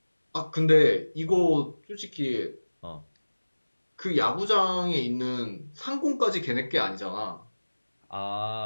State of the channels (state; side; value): inverted; both; correlation -1.00